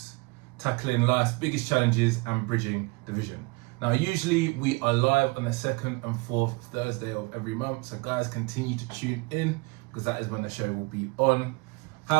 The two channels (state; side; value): quieter; left; 27.5 dB